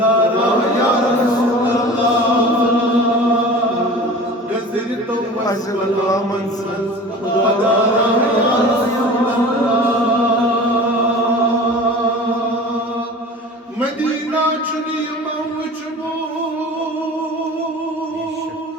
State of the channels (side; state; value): both; normal; correlation 0.39